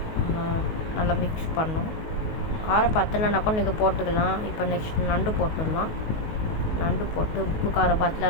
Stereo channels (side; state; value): right; late; 19 ms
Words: நல்லா மிக்ஸ் பண்ணணும். காரம் பத்தலைனாக்கும் நீங்கள் போட்டுக்கலாம். இப்போ நெக்ஸ்ட் நண்டு போட்டுடலாம். நண்டு போட்டு உப்பு காரம்